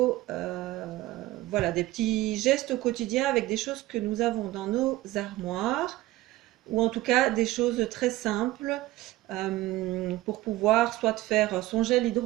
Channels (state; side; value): quieter; left; 17.0 dB